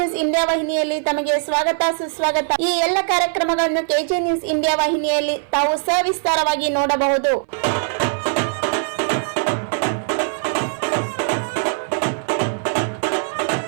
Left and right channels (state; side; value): silent; left; 60 dB below the other